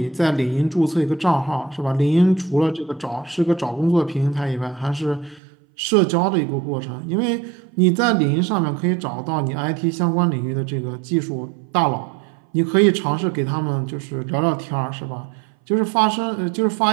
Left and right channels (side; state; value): left; drops out; at 5.4 s